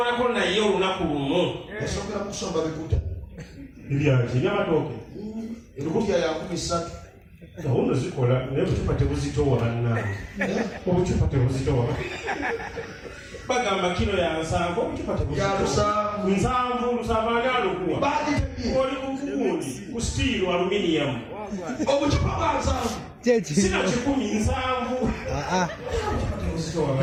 naye olunaku lumu yasongera mu kusomba bikuta ebyaki ebyamatooke ebikutya ya 13 gahunda zikola naye obucupa tebuzitowa bannange obucupa tebuzitowa bagamba kilo ya 7 obucupa tebuzitowa 7 ani alukuwa oli kukugundi ku steel aluminium obucupa bwa 7 sina 7 tebuzitowa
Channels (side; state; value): both; identical; correlation 1.00